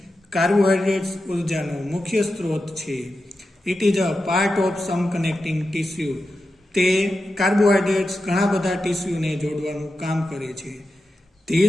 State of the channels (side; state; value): both; normal; correlation 0.90